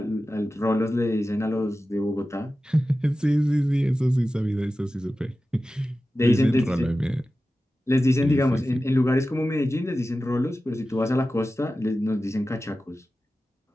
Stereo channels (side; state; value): both; normal; correlation 0.94